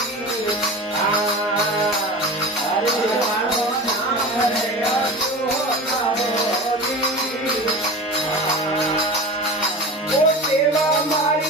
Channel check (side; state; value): both; normal; correlation 0.31